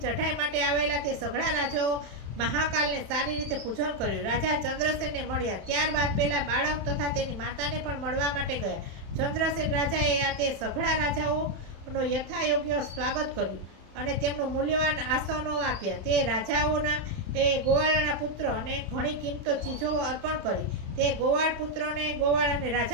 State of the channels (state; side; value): late; left; 31 ms